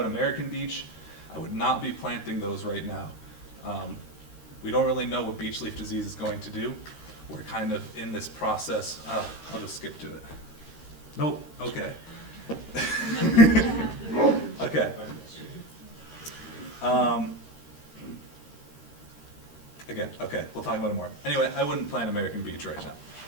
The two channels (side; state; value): right; late; 13 ms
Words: American beech. I would not be planting those right now. We don't really know what beech leaf disease is going to do. We're kind of in this process. I'll just skip to it. Nope, okay. Okay. Again, okay, we'll talk about it more. Anyway, I wouldn't plant American beech right now.